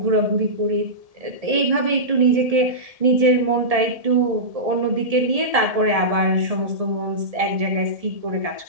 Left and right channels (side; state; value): left; late; 1.7 ms